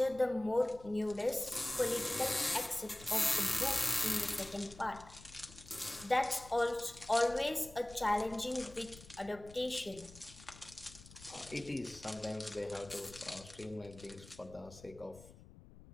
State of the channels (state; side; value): noise; left; rumble, 19 dB below the sound